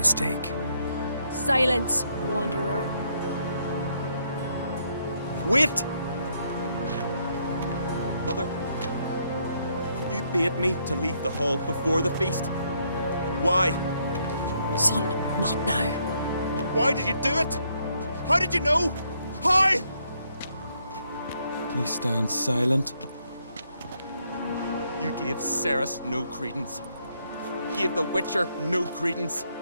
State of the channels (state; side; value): inverted; both; correlation -0.73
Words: Silence, wanderer. Wait! Mother, you bade me to leave the hall before the feast. Why? Son, not now. Why did you do it? How did you know? How? You stand silent. You gave Ceres no credence. Gave the Witcher no credence.